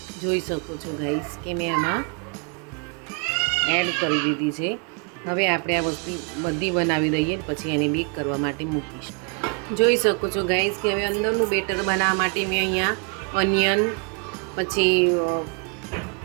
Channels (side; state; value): left; quieter; 34.8 dB